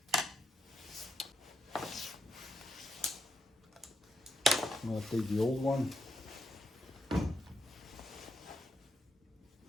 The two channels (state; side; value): normal; both; correlation 0.82